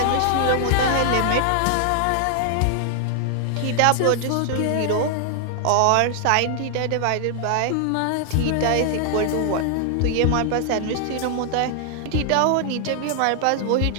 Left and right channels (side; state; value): both; different; correlation 0.00